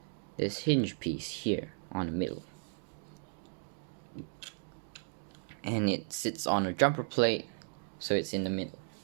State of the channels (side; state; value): left; silent; 54 dB below the other